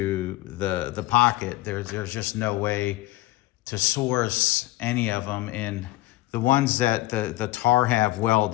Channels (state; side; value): quieter; right; 18.0 dB